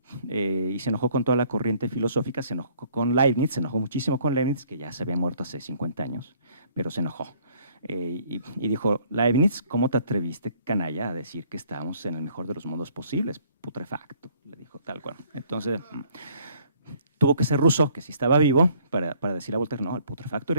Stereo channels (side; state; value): both; inverted; correlation -0.60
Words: y se enojó con toda la corriente filosófica, se enojó con Leibniz, se enojó muchísimo con Leibniz, que ya se había muerto hace 50 años, pero se enojó. Y dijo, Leibniz, ¿cómo te atreviste, canalla, a decir que estábamos en el mejor de los mundos posibles? Putrefacto, le dijo tal cual. Entonces, tuvo que ser Rousseau, que sí estaba vivo, para decirle a Voltaire, no, el putrefacto